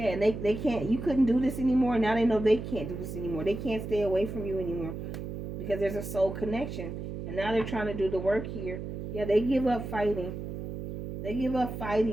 and they can't, you couldn't do this anymore. Now they know they can't do this anymore. They can't stay away from you anymore. Because there's a soul connection. And now they're trying to do the work here. Yeah, they give up fighting. They give up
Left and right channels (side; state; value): right; noise; hum, 7 dB below the sound